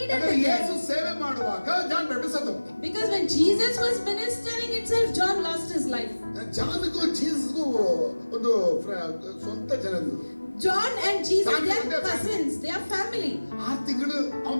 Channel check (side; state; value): both; inverted; correlation -1.00